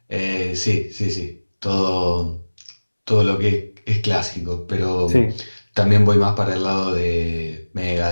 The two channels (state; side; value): inverted; both; correlation -1.00